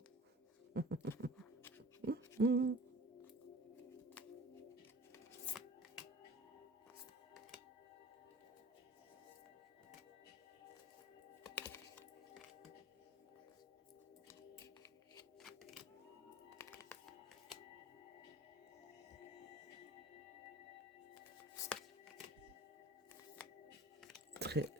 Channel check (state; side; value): normal; both; correlation 0.45